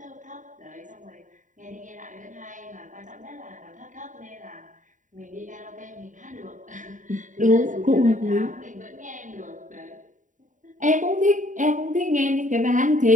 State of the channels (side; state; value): left; late; 0.37 ms